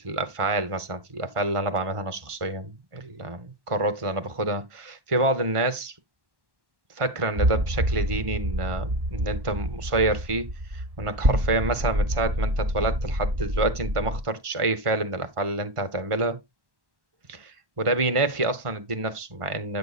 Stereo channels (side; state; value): left; late; 1.5 ms